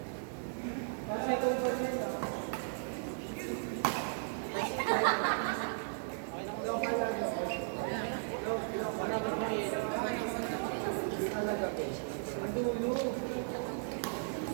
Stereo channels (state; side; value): silent; left; 54 dB below the other